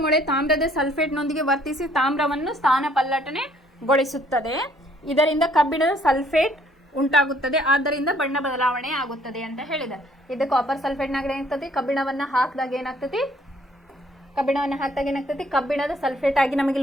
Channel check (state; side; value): normal; both; correlation 0.63